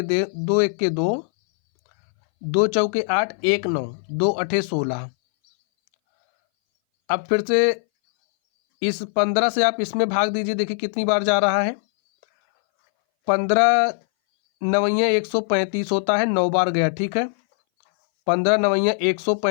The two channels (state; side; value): silent; right; 62 dB below the other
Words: 2, 2 चौके 8, 1 9, 2 8 16। अब फिर से इस 15 से आप इसमें भाग दीजिए, देखिए कितनी बार जा रहा है। 15 नवैया 135 होता है, 9 बार गया। ठीक है, 15 नवैया